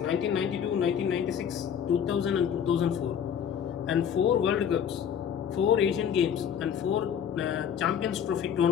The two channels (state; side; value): quieter; right; 8.4 dB